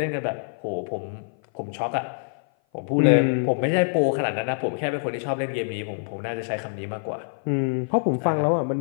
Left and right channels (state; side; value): silent; right; 57 dB below the other